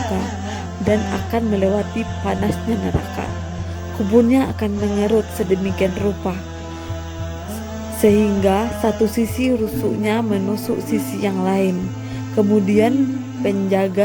dan akan melewati panasnya neraka. Kuburnya akan mengerut sedemikian rupa sehingga satu sisi rusuknya menusuk sisi yang lain. Kemudian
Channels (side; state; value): both; identical; correlation 1.00